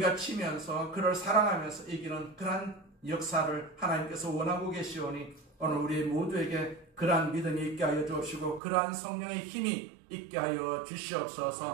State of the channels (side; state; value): left; drops out; at 8.6 s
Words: 치면서 그를 사랑하면서 이기는 그러한 역사를 하나님께서 원하고 계시오니 오늘 우리 모두에게 그러한 믿음이 있게 하여 주옵시고 그러한 성령의 힘이 있게 하여